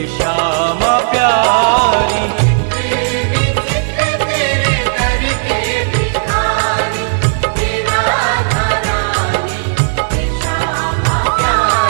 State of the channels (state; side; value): silent; left; digital silence